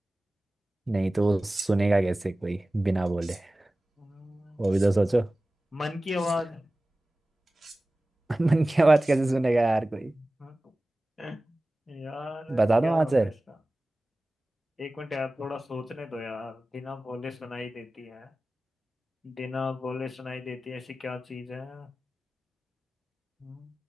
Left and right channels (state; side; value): normal; both; correlation 0.97